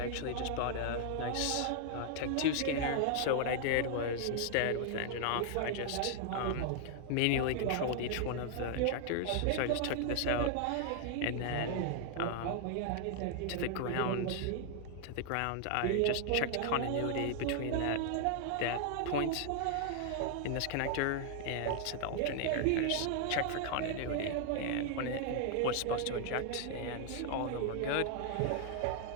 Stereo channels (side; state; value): both; different; correlation 0.00